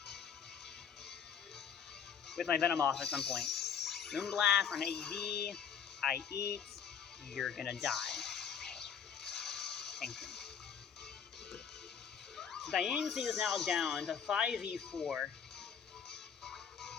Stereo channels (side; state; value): right; quieter; 7.4 dB